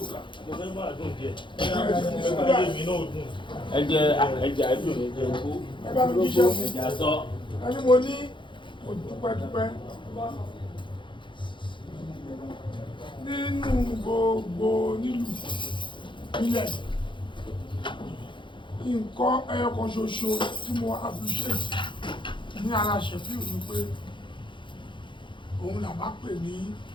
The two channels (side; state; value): right; late; 0.23 ms